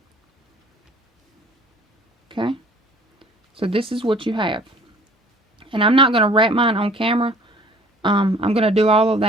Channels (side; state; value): both; normal; correlation 0.51